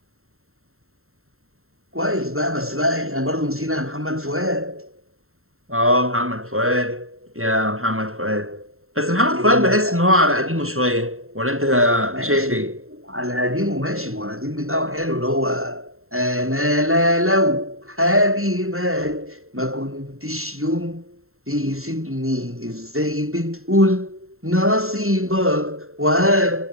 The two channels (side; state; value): left; late; 0.62 ms